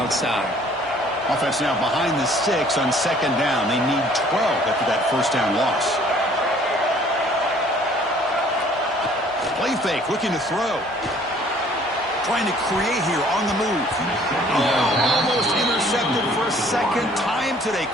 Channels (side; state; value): both; normal; correlation 0.57